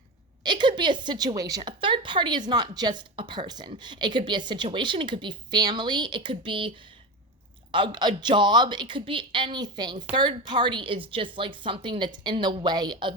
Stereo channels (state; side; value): normal; both; correlation 0.22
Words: it could be a situation. A third party is not just a person. It could be a situation. It could be family. It could be a job. It could be anything. Third party is just like something that's in the way